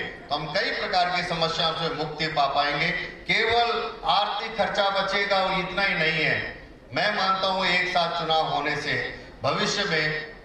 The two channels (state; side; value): identical; both; correlation 1.00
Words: हम कई प्रकार की समस्याओं से मुक्ति पा पाएंगे। केवल आर्थिक खर्चा बचेगा और इतना ही नहीं है। मैं मानता हूं एक साथ चुनाव होने से भविष्य में